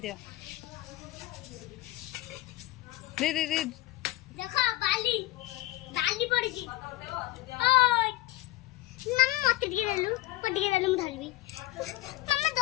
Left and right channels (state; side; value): quieter; right; 17.6 dB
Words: दे देखो बाली पड़ गई ओय नम मत गिरलु म धरबी मम्मा